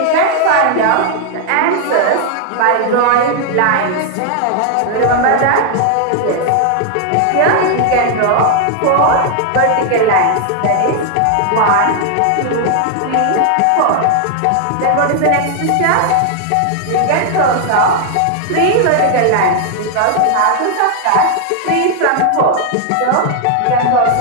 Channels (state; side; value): different; both; correlation 0.00